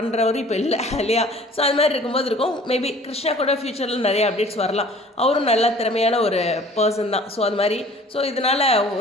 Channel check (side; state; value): both; normal; correlation 0.49